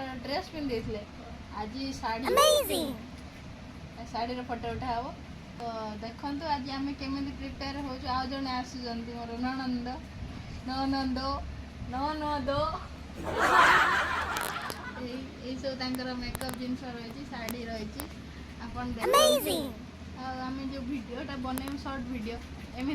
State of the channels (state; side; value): identical; both; correlation 1.00